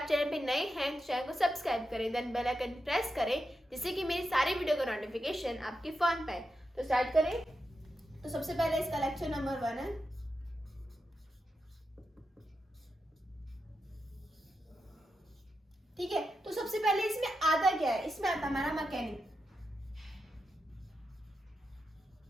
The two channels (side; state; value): both; normal; correlation 0.87